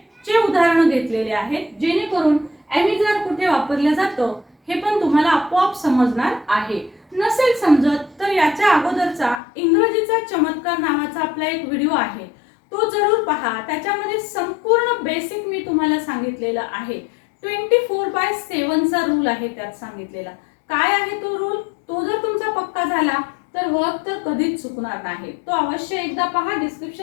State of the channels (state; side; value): drops out; right; at 9.4 s